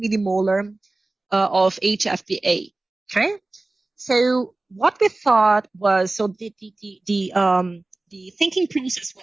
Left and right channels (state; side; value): quieter; left; 3.0 dB